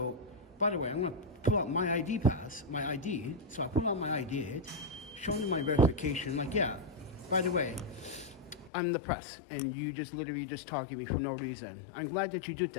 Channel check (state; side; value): drops out; right; at 8.7 s